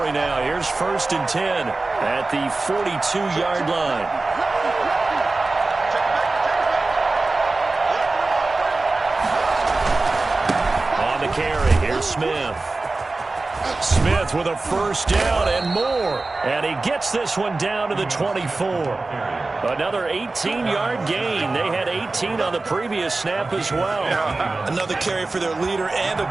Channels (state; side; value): quieter; left; 3.4 dB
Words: now. Here's 1st and 10 at the 42-yard line. Carry. Here's Smith. Smith with a first down and more. And he gets this one down to the 24. Another 18-yard gain. They had 18 on the previous snap as well. Another carry for their leader and a